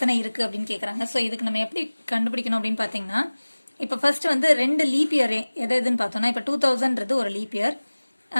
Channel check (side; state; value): both; inverted; correlation -1.00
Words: இருக்குது அப்படின்னு கேட்குறாங்க. ஸோ இதுக்கு நம்ம எப்படி கண்டுபிடிக்கணும் அப்படின்னு பார்த்தீங்கன்னா, இப்போ ஃபர்ஸ்ட் வந்து 2 லீப் இயர் எதுன்னு பார்த்தோம்னா, இப்போ 2000ன்றது ஒரு லீப் இயர்.